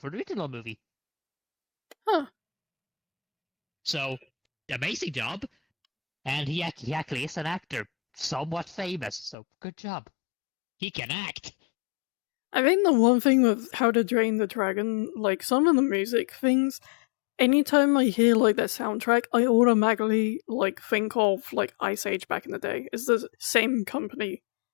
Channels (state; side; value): drops out; right; at 9.3 s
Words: the original movie. Huh. So, amazing job. And he actually is an actor, somewhat famous. So, good job. He can act. I think the one thing with How to Drain the Dragon, like some of the music things, anytime I hear like that soundtrack, I automatically like think of like Ice Age back in the day. It's the same company